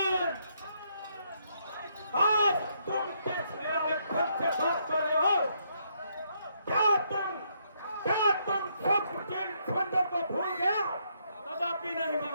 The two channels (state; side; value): inverted; both; correlation -0.74